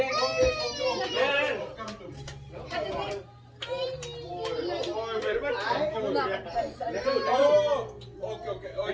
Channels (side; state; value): both; identical; correlation 1.00